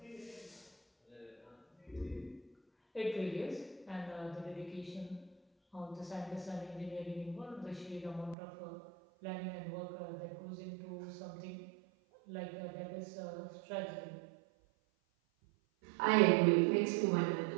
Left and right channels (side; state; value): left; drops out; at 8.3 s